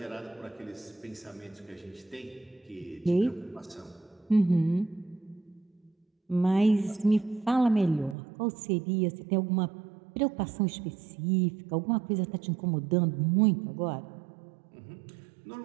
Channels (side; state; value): left; drops out; at 8.2 s